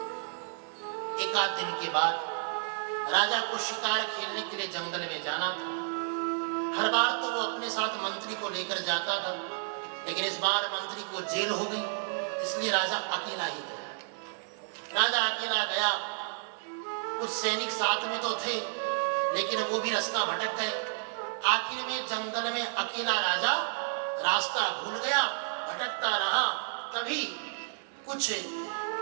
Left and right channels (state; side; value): silent; left; digital silence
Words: एक आध दिन के बाद राजा को शिकार खेलने के लिए जंगल में जाना था। हर बार तो वो अपने साथ मंत्री को लेकर जाता था, लेकिन इस बार मंत्री को जेल हो गई, इसलिए राजा अकेला ही गया। राजा अकेला गया, कुछ सैनिक साथ में तो थे, लेकिन वो भी रास्ता भटक गए। आखिर में जंगल में अकेला राजा रास्ता भूल गया, भटकता रहा। तभी कुछ